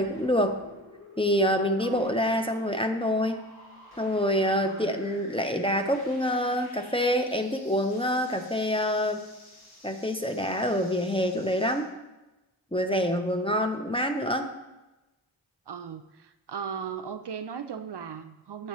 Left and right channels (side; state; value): both; normal; correlation 0.36